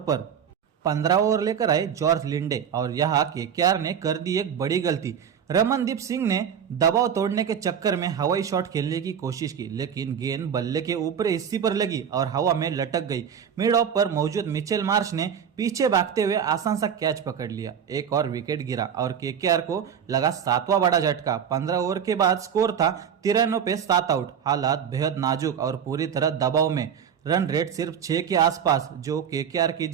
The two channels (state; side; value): quieter; left; 8.0 dB